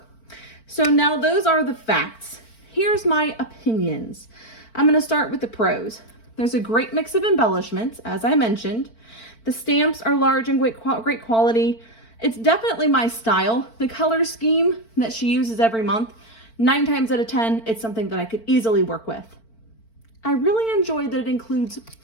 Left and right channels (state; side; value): late; right; 4.4 ms